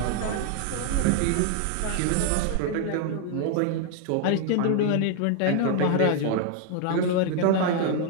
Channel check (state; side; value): different; both; correlation 0.00